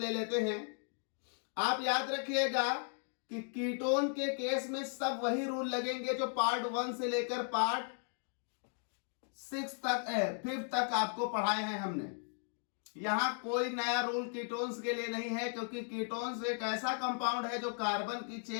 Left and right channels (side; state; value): right; silent; 54 dB below the other